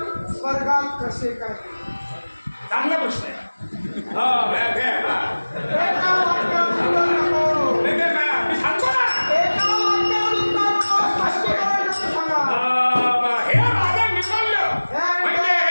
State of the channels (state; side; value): inverted; both; correlation -1.00